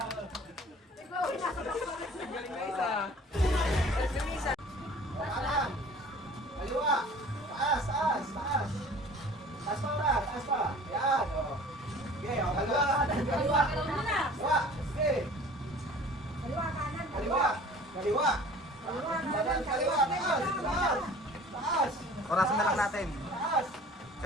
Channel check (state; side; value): normal; both; correlation 0.46